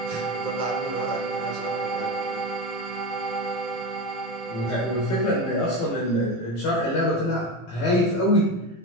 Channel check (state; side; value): late; right; 18 ms